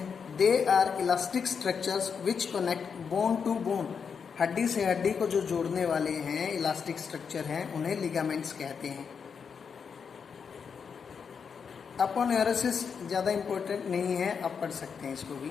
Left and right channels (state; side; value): quieter; right; 6.3 dB